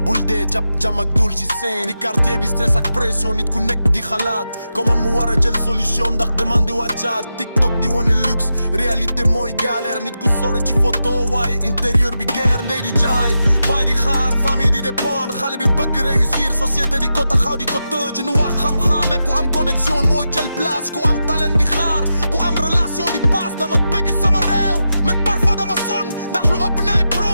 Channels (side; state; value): both; inverted; correlation -0.89